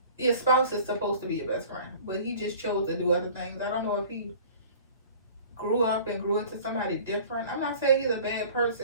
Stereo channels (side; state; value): both; inverted; correlation -0.46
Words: Your spouse is supposed to be your best friend, but he just chose to do other things. I don't know if he grew up and grew into somebody different. I'm not saying he's a bad